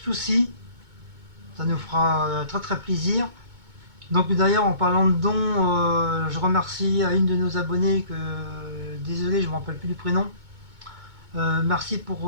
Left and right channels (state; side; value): late; left; 2.2 ms